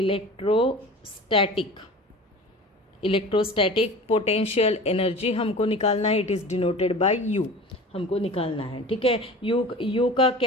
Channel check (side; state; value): both; normal; correlation 0.37